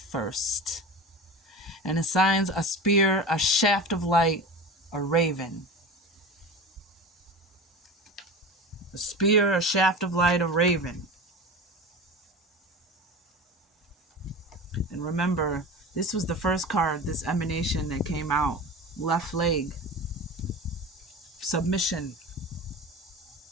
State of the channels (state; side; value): normal; both; correlation 0.31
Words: and assigns a spear, a shaft of light, a raven. A spear, a shaft of light, a raven. And remember, this was the first card, this emanation that came out. Left leg. Submission.